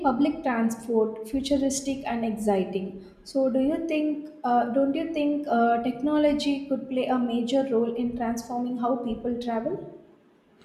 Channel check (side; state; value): both; identical; correlation 1.00